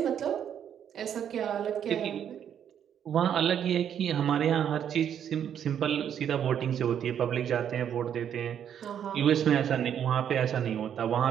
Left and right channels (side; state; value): left; quieter; 9.1 dB